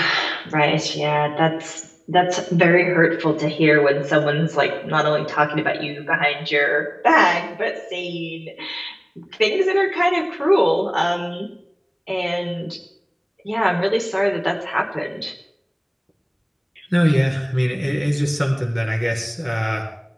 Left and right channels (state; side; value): identical; both; correlation 1.00